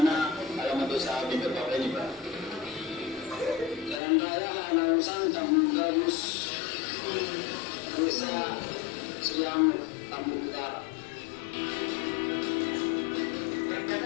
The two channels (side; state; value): right; drops out; at 4.0 s